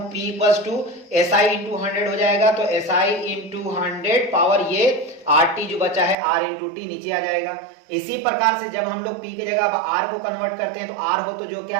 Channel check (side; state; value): left; drops out; at 6.2 s